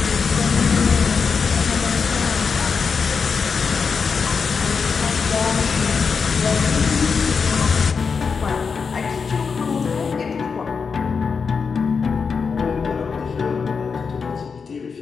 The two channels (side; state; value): right; quieter; 5.5 dB